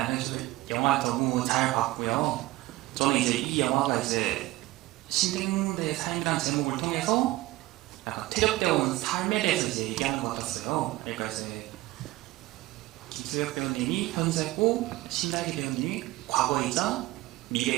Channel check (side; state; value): left; quieter; 18.4 dB